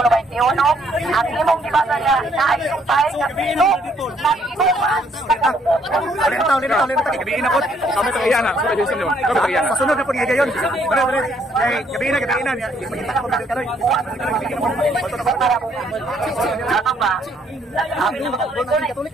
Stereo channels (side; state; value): both; normal; correlation 0.67